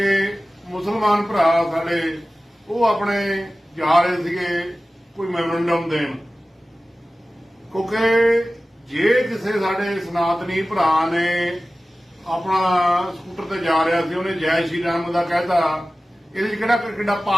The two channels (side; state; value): both; normal; correlation 0.96